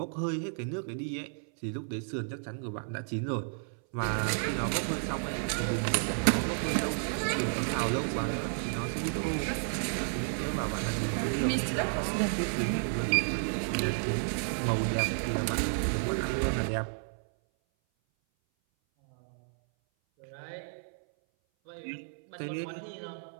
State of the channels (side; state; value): left; silent; 57 dB below the other